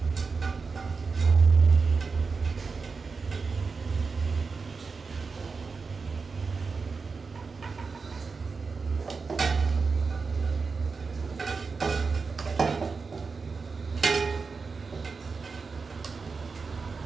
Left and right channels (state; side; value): quieter; left; 4.7 dB